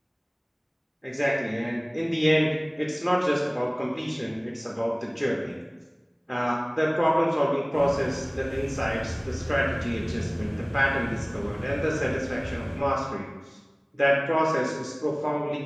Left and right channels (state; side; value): identical; both; correlation 1.00